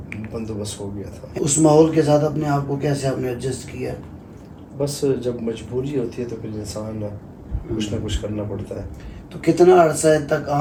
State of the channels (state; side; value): identical; both; correlation 1.00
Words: بندوبست ہو گیا تھا. اس ماحول کے ساتھ اپنے آپ کو کیسے آپ نے ایڈجسٹ کیا؟ بس جب مجبوری ہوتی ہے تو پھر انسان کچھ نہ کچھ کرنا پڑتا ہے. تو کتنا عرصہ تک